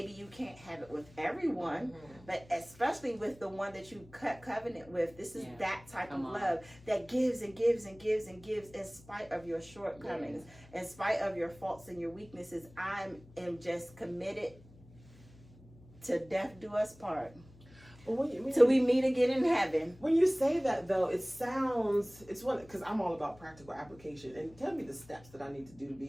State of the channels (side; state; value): left; noise; hum, 23 dB below the sound